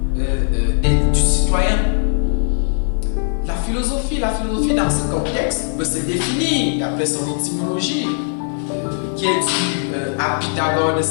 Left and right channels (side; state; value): right; silent; digital silence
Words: du citoyen. La philosophie dans ce contexte peut se définir d'après son étymologie, qui est due à Pythagore de